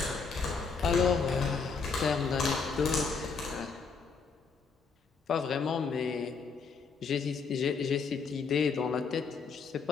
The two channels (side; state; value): right; quieter; 5.2 dB